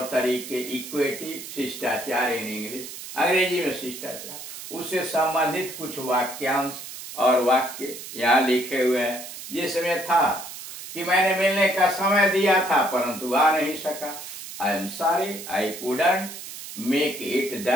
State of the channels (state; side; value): noise; right; hiss, 11 dB below the sound